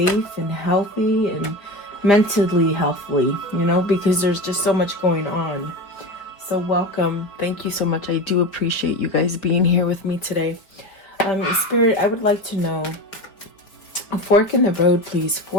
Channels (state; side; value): late; right; 4.5 ms